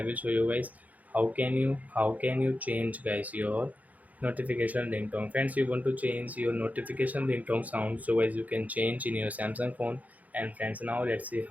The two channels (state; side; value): late; left; 0.076 ms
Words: will show you guys how can you change guys your notification ringtone. Friends, you want to change your notification ringtone sound, so guys you can change in your Samsung phone. And friends, now let's see